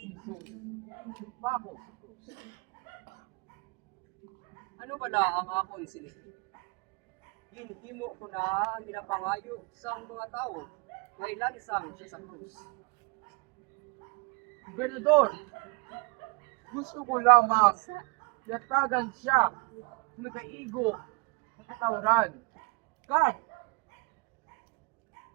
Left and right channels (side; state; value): left; quieter; 28.2 dB